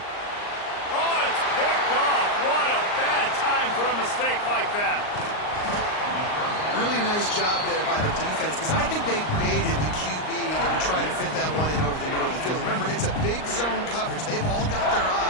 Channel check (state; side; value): late; right; 39 ms